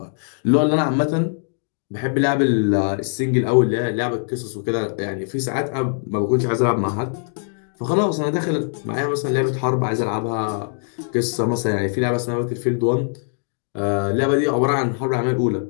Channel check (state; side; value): silent; right; digital silence